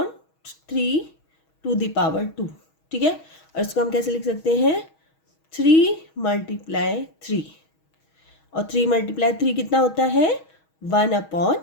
3 टू दी पावर 2। ठीक है, और इसको हम कैसे लिख सकते हैं? 3 मल्टीप्लाई 3, और 3 मल्टीप्लाई 3 कितना होता है? 1 अपॉन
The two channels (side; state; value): right; late; 6.3 ms